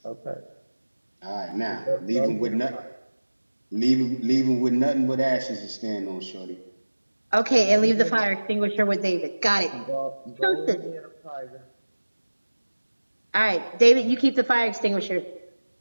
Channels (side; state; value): both; inverted; correlation -1.00